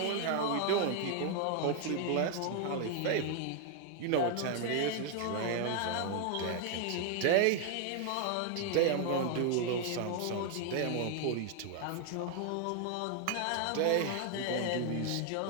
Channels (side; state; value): both; different; correlation 0.00